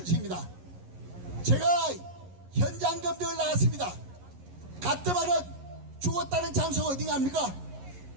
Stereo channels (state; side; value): late; left; 11 ms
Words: 제가 현장 검증을 나갔습니다. 가뜩하면 죽었다는 장소가 어딘가 합니까?